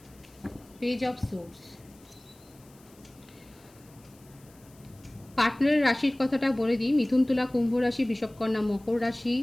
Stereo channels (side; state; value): left; noise; hiss, 28 dB below the sound